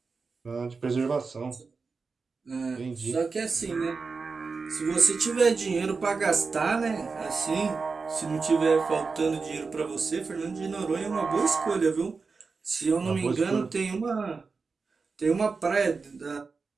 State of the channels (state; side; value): quieter; left; 4.6 dB